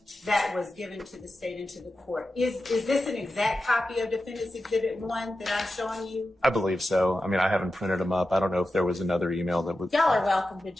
that was given to the state and to the court. Is this an exact copy of Defendant's Exhibit 1 that I'm showing you? I believe so. I mean, I haven't printed them up. I don't know if there was another email that was. Y'all are welcome to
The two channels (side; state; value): both; normal; correlation 0.91